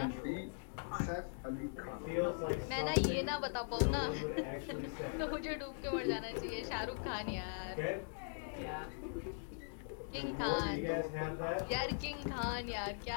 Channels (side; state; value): right; silent; digital silence